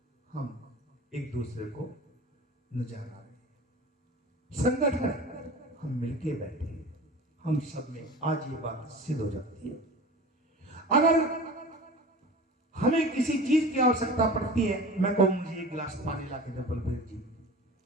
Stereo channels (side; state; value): both; normal; correlation 0.37